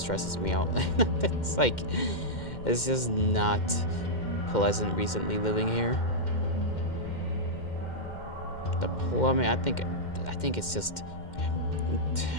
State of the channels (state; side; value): late; right; 2.1 ms